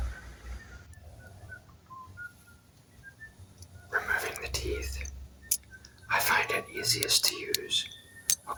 Removing the teeth. I find it easiest to use a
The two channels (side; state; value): both; identical; correlation 1.00